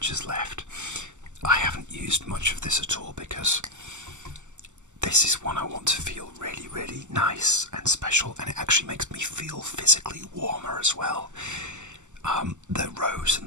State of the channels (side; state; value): left; late; 0.84 ms